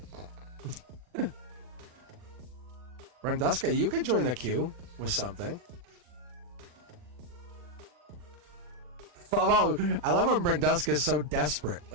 Brenduska, you could join the queue with something. I love when Brenduska is so desperate.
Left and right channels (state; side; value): late; left; 40 ms